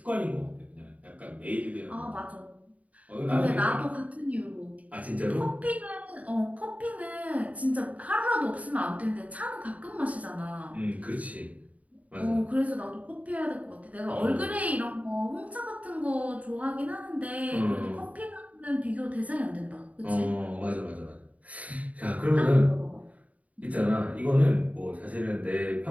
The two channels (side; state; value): left; late; 0.070 ms